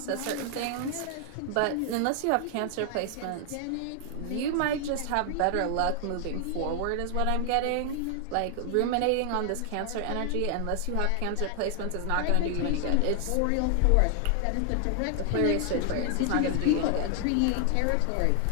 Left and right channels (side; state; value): both; different; correlation 0.00